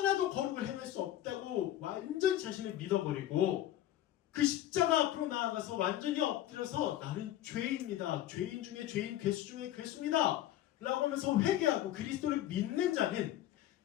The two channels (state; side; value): quieter; right; 13.0 dB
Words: 거룩을 행할 수 없다고 완전히 자신을 믿어버리고 그 십자가 앞으로 나아가서 완전히 엎드려서 나는 죄인입니다. 죄인 중에 죄인, 괴수 중에 괴수입니다. 라고 하면서 회개하고 그리스도를 믿는 자는